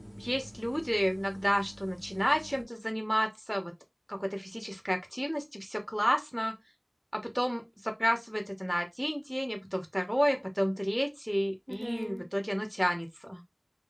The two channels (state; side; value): identical; both; correlation 1.00